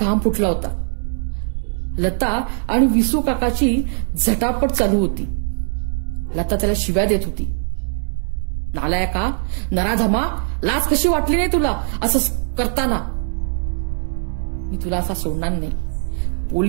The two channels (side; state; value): left; silent; digital silence